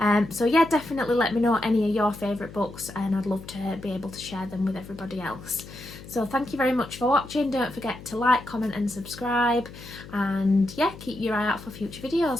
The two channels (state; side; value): noise; left; hum, 16 dB below the sound